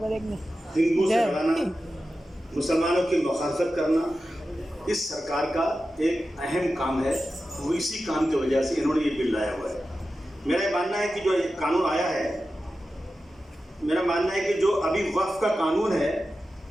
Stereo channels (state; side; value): normal; both; correlation 0.92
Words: हिंदू से लड़ाना, मुसलमानों की मुखालफत करना इस सरकार का एक अहम काम है। वो इसी काम की वजह से इन्होंने ये बिल लाया हुआ है। मेरा मानना है कि जो कानून आया है, मेरा मानना है कि जो अभी वक्फ का कानून है